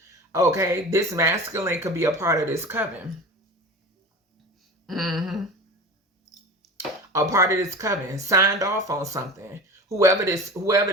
Okay, this masculine could be a part of this coven. A part of this coven, signed off on something. Whoever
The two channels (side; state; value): both; normal; correlation 0.33